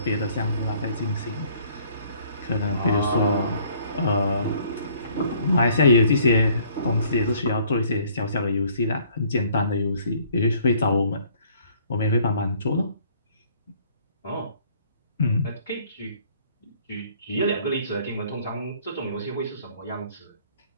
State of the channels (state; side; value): inverted; both; correlation -0.59